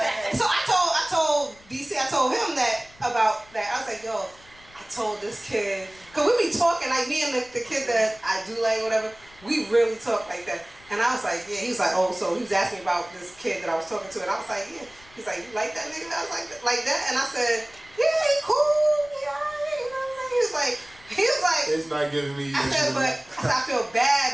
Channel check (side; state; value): left; noise; rumble, 26 dB below the sound